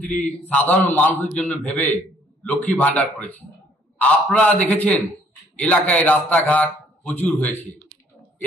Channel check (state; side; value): normal; both; correlation 0.62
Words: সাধারণ মানুষের জন্য ভেবে লক্ষ্মী ভান্ডার করেছে। আপনারা দেখেছেন এলাকায় রাস্তাঘাট প্রচুর হয়েছে,